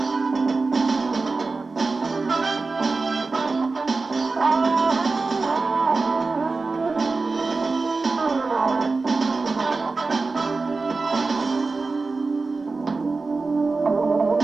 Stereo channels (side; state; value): left; quieter; 3.9 dB